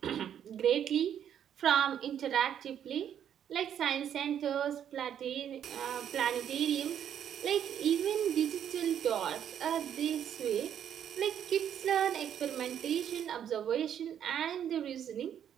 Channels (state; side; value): quieter; left; 9.4 dB